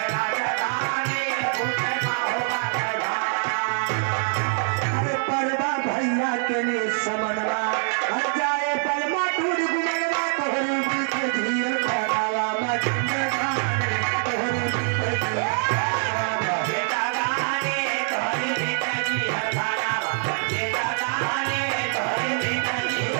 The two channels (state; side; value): silent; left; 56 dB below the other